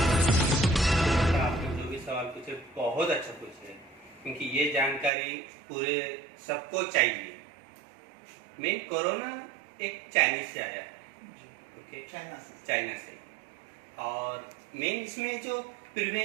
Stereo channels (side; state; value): left; drops out; at 5.1 s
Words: आपने जो भी सवाल पूछे बहुत अच्छा पूछे, क्योंकि ये जानकारी पूरे सबको चाहिए। मेन कोरोना एक चाइनीज से आया है, ओके, चाइना से। और मेन इसमें जो